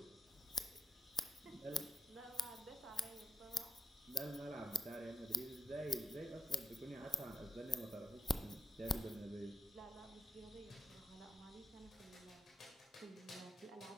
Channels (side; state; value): both; normal; correlation 0.78